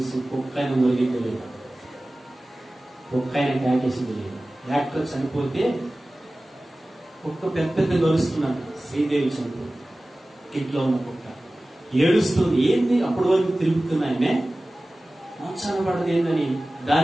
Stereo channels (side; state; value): both; normal; correlation 0.97